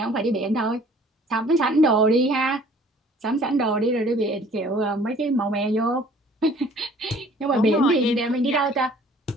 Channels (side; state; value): both; normal; correlation 0.53